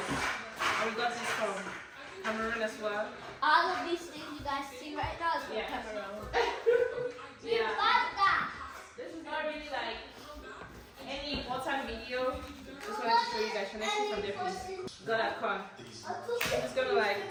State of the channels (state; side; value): identical; both; correlation 1.00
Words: And we got this from Cameroon as well. All of these things you guys see right now is from Cameroon. Yeah. This is not really like any important video. Just wanted to show you guys. Can I see from there, please? Got a corn. I'm just gonna like